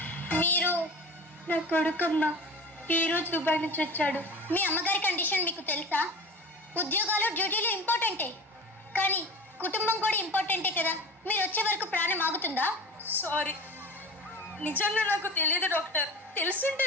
మీరు? నా కొడుకమ్మ ఈ రోజు దుబాయ్ నుంచి వచ్చాడు. మీ అమ్మగారి కండిషన్ మీకు తెలుసా? ఉద్యోగాలు డ్యూటీలు ఇంపార్టెంటే, కానీ కుటుంబం కూడా ఇంపార్టెంటే కదా. మీరు వచ్చే వరకు ప్రాణం ఆగుతుందా? సారీ, నిజంగా నాకు తెలియదు డాక్టర్. తెలుసుంటే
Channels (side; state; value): both; normal; correlation 0.35